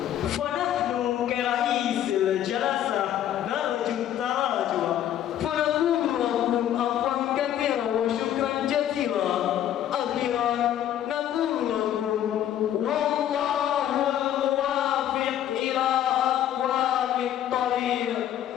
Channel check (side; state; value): right; quieter; 11.2 dB